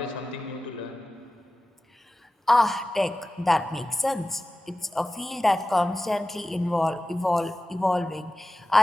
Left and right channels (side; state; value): both; normal; correlation 0.95